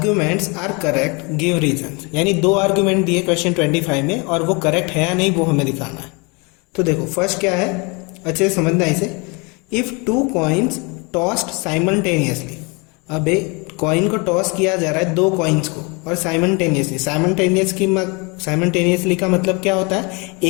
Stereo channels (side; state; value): right; quieter; 30.0 dB